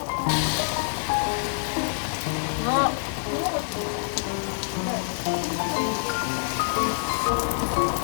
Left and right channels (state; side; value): silent; right; digital silence